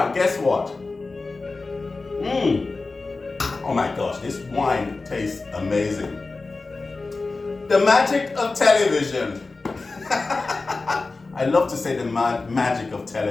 guess what? Oh my gosh, this wine tastes amazing. The magic of television. I love to say the magic of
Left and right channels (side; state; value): right; quieter; 3.7 dB